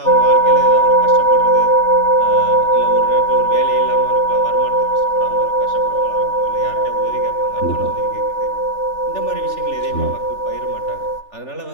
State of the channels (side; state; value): right; late; 3.4 ms